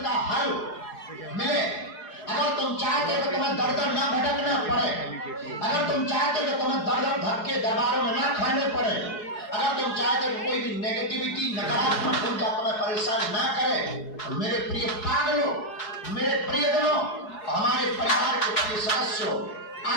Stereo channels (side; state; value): right; late; 4.7 ms